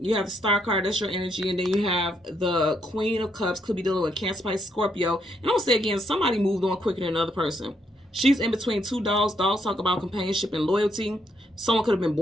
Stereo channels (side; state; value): both; normal; correlation 0.75